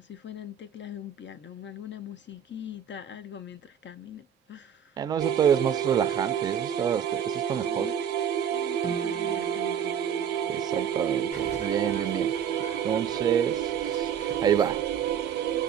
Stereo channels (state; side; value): quieter; left; 8.4 dB